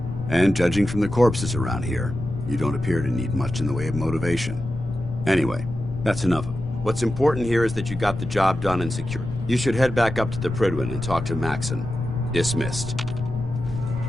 And judging from the corpses around here, you don't appear to need much in the way of motivation. Anyway, that's enough. What's important here is that you got the job done and secured. You should head back up to the Prydwen and talk to Maxon. Dismissed.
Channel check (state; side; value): noise; left; rumble, 10 dB below the sound